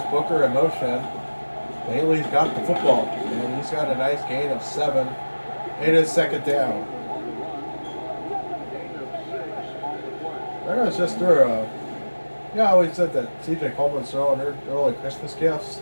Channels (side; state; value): both; inverted; correlation -1.00